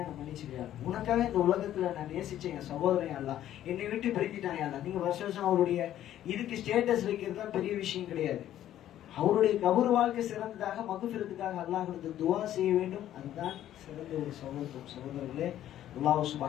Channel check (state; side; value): quieter; right; 12.1 dB